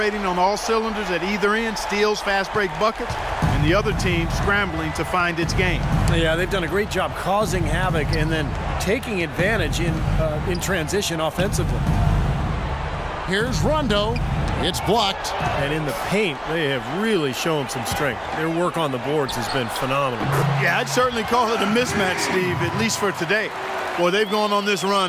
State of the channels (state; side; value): identical; both; correlation 1.00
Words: on all cylinders at either end, steals, fast break buckets, and the other team scrambling to find its game. Yeah, they've done a great job causing havoc and then taking advantage in transition offensively. Here's Rondo. It's blocked. And in the paint, they have really shown some strength. Their work on the boards has been phenomenal. Yeah, I'd certainly call it a mismatch, Steve, at least for today. Boy, they've gone on this